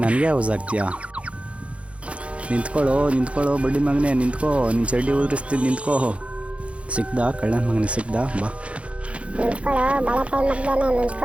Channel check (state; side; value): late; left; 0.061 ms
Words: ನನಗೆ ಯೂಸ್ ಆಗ್ತೀಯಾ? ನಿಂತ್ಕೊಳ್ಳೋ ಬಡ್ಡಿ ಮಗನೇ, ನಿಂತ್ಕೋ. ನಿನ್ನ ಚಡ್ಡಿ ಉದುರಿಸ್ತೀನಿ, ನಿಂತ್ಕೋ. ಸಿಕ್ದಾ ಕಳ್ಳನ ಮಗನೇ, ಸಿಕ್ದಾ? ಬಾ. ನಿಂತ್ಕೊಳ್ಳೋ ಬಾಳೆಕಾಯಿ ಮಗ್ದೇನೆ,